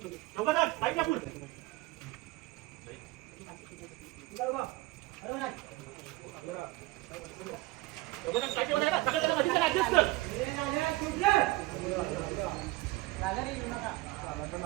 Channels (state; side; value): quieter; left; 19.9 dB